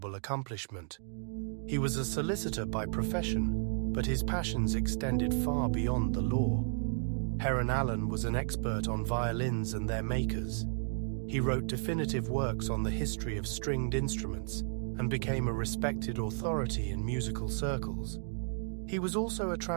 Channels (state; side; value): silent; left; digital silence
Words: accomplishment. He was a solicitor by profession, but his passions extended far beyond the law. Heron Allen was an expert on violins and their makers. He wrote definitive works on the history of stringed instruments and became a respected authority in musical circles. He was also a